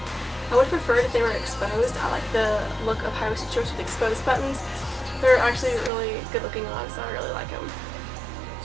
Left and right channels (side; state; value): left; drops out; at 5.9 s